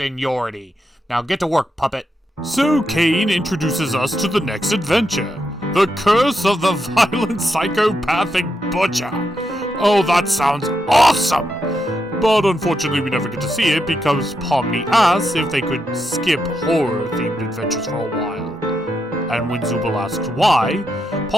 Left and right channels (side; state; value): both; normal; correlation 0.83